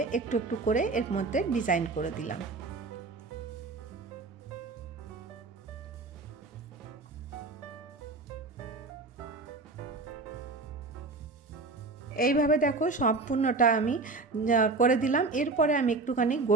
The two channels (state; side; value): quieter; left; 3.8 dB